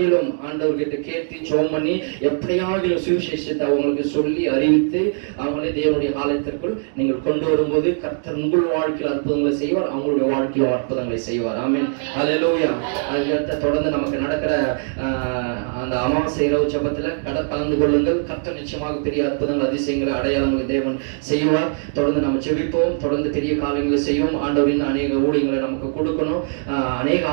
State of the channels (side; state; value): left; silent; 64 dB below the other